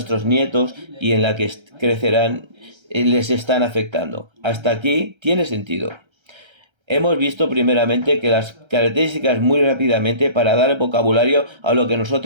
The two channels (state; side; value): late; left; 1.3 ms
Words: nietos y en la que crecerán, les están afectando. Hasta aquí tiene sentido. Hemos visto primeramente que las características muy rápidamente para dar el vocabulario a lo que